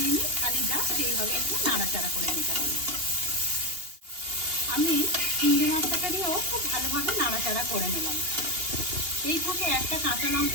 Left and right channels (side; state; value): left; late; 2.8 ms